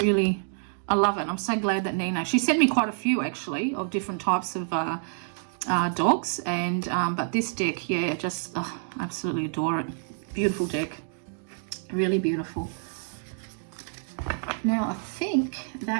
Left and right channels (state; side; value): silent; left; 60 dB below the other